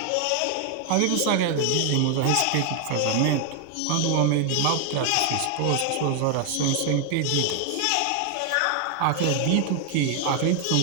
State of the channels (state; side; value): different; both; correlation 0.00